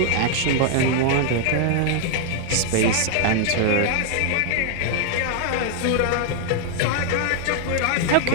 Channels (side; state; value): both; different; correlation 0.00